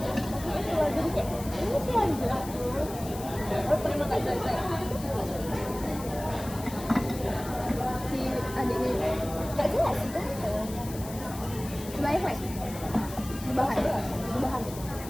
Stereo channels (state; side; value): noise; left; hiss, 14 dB below the sound